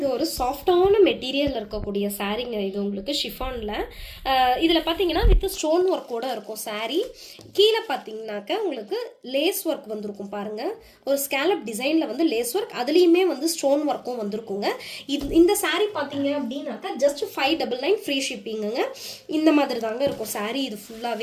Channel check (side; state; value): both; identical; correlation 1.00